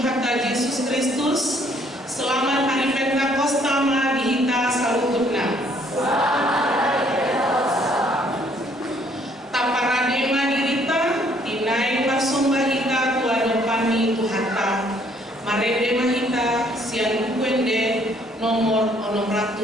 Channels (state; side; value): normal; both; correlation 0.64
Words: Hatta Yesus Kristus. Selamat hari Pentakosta dihita salututna. Taparadema dirita dinai parsombahita tuan pani Ibu Hatta. Marede mahita sian bukuende nomor